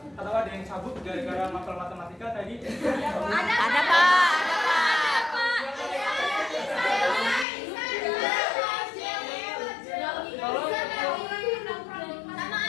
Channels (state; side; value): drops out; right; at 7.5 s